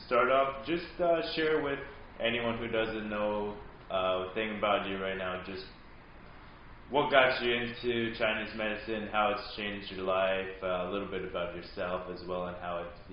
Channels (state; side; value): identical; both; correlation 1.00